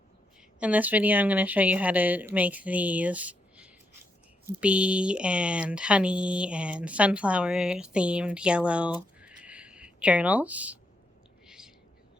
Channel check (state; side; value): normal; both; correlation 0.80